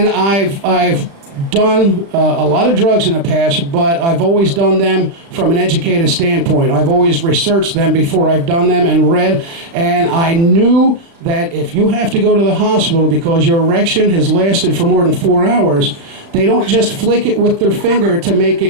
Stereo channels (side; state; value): left; late; 36 ms